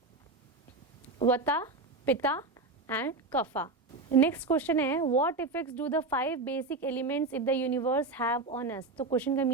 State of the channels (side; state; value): left; quieter; 3.4 dB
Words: vata, pitta and kapha. Next question है what effects do the 5 basic elements in the universe have on us. तो question का